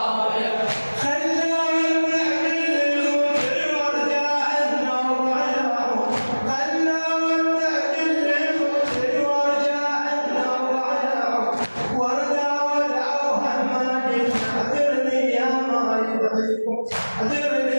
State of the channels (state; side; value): inverted; both; correlation -1.00